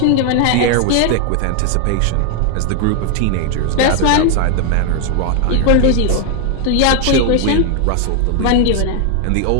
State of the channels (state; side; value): different; both; correlation 0.00